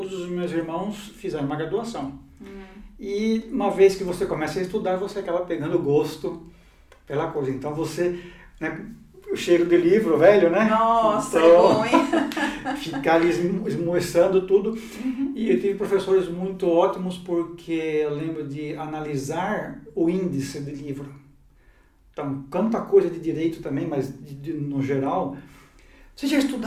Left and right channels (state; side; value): identical; both; correlation 1.00